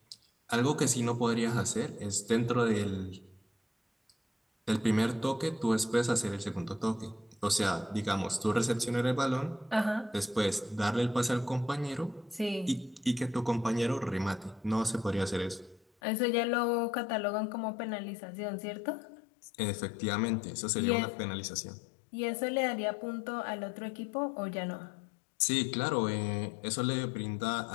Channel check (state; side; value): drops out; right; at 15.9 s